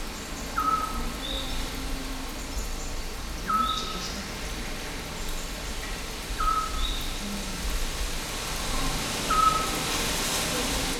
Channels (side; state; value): both; identical; correlation 1.00